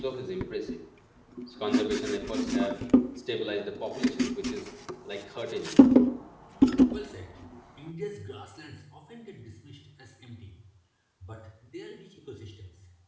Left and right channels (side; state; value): both; identical; correlation 1.00